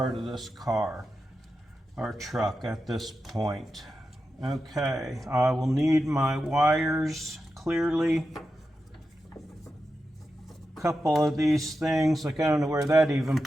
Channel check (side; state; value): both; normal; correlation 0.90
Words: of this car or truck at this point. Okay, I will need my wires clearly. A couple of these things, like I don't know where that even